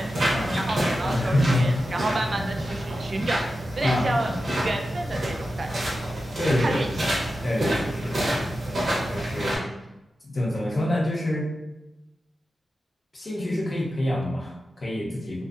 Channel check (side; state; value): both; normal; correlation 0.91